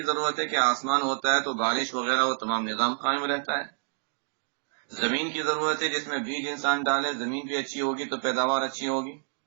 ضرورت ہے کہ آسمان ہوتا ہے تو بارش وغیرہ وہ تمام نظام قائم رہتا ہے۔ زمین کی ضرورت ہے جس میں بیج انسان ڈالے، زمین بھی اچھی ہوگی تو پیداوار اچھی ہوگی۔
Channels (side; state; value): left; silent; digital silence